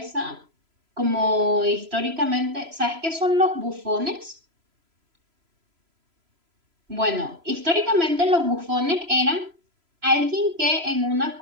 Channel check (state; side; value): late; left; 3.0 ms